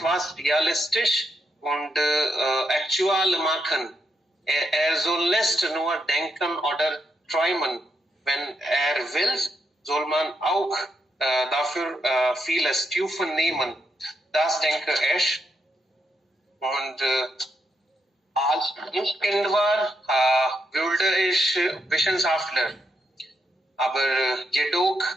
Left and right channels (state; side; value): normal; both; correlation 0.80